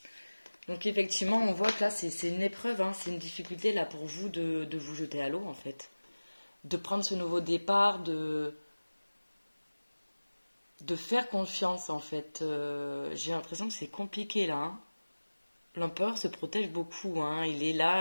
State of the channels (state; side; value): inverted; both; correlation -1.00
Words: Donc effectivement, on voit que là, c'est une épreuve, hein, c'est une difficulté là pour vous de vous jeter à l'eau en fait. De prendre ce nouveau départ, de faire confiance en fait. J'ai l'impression que c'est compliqué là. Hein. L'empereur se protège beaucoup. Hein. Il est